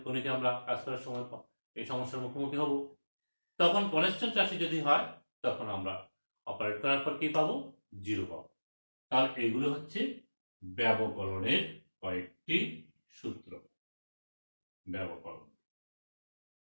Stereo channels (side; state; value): both; inverted; correlation -1.00